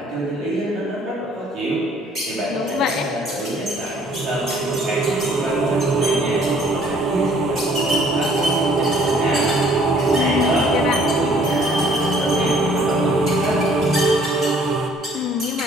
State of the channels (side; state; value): both; normal; correlation 0.59